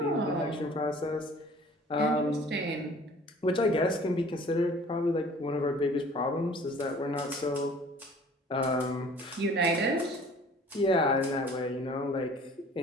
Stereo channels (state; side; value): normal; both; correlation 0.50